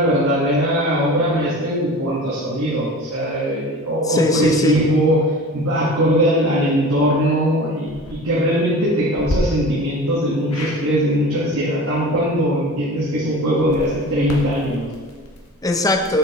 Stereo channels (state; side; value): normal; both; correlation 0.38